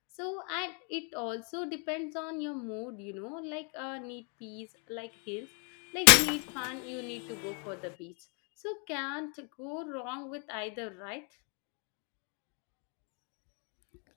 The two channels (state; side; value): quieter; right; 38.2 dB